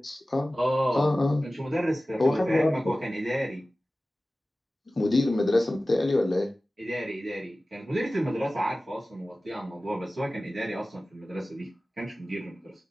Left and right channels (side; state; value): both; normal; correlation 0.96